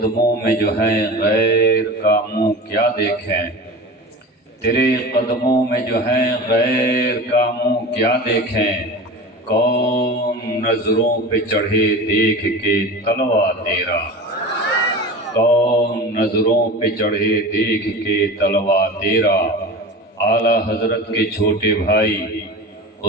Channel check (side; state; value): both; normal; correlation 0.33